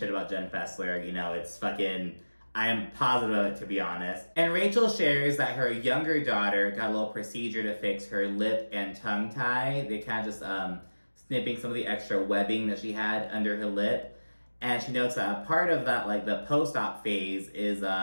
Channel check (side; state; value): both; inverted; correlation -1.00